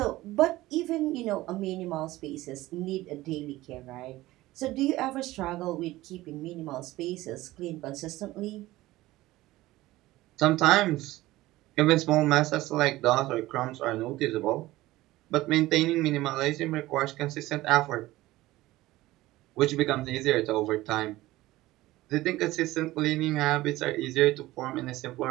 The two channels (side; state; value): left; quieter; 17.5 dB